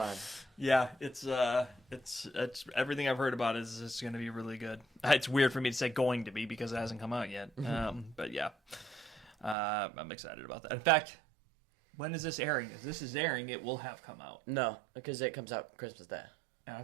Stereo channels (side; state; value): left; drops out; at 9.6 s